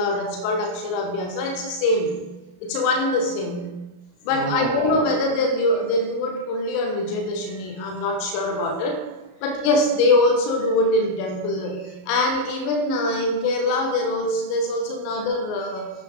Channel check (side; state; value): right; late; 33 ms